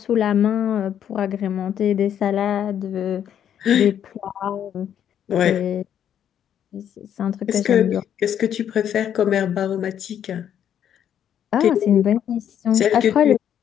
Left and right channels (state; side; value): quieter; right; 9.5 dB